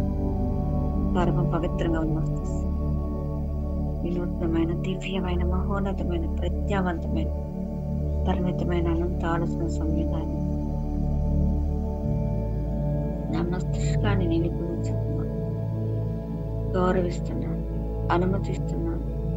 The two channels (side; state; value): both; identical; correlation 1.00